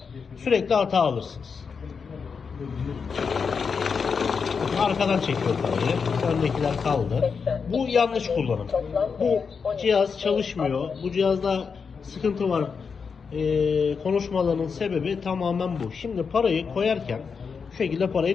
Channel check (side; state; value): right; quieter; 5.7 dB